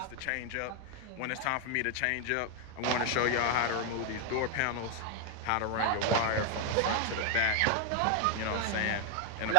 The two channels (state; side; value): different; both; correlation 0.00